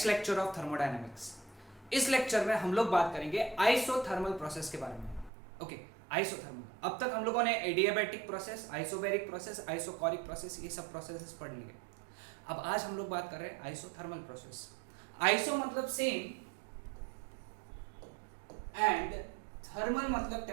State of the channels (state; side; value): drops out; left; at 5.3 s